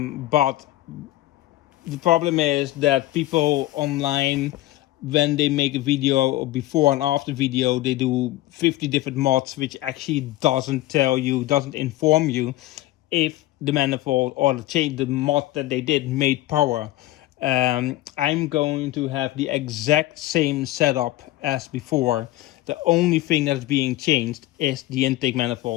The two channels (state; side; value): quieter; right; 16.6 dB